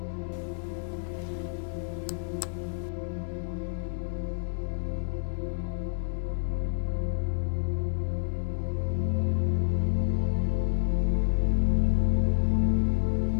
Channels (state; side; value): silent; right; digital silence